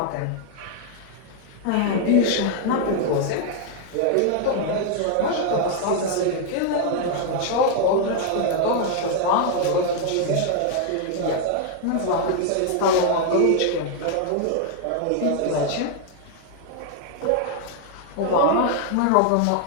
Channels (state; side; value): different; both; correlation 0.00